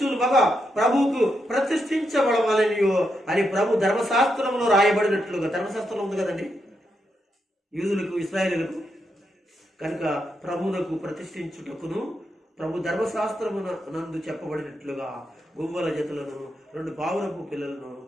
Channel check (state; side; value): normal; both; correlation 0.83